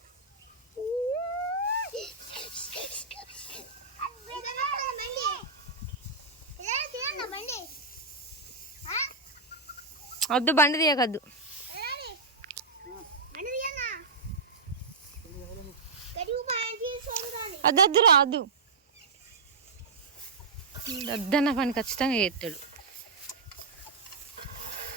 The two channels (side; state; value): left; quieter; 4.1 dB